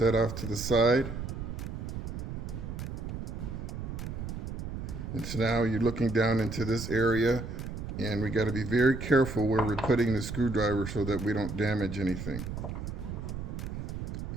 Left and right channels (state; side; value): noise; right; rumble, 6 dB below the sound